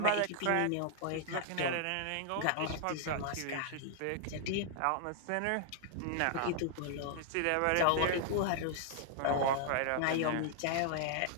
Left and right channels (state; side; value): different; both; correlation -0.01